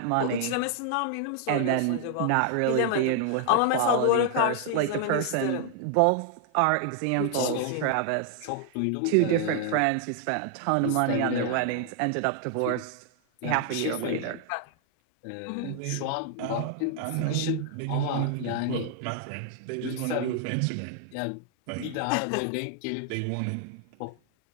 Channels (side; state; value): both; different; correlation 0.00